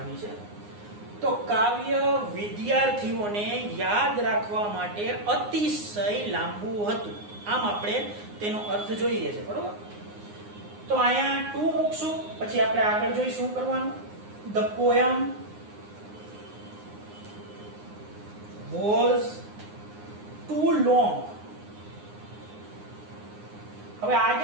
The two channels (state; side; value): late; left; 9.7 ms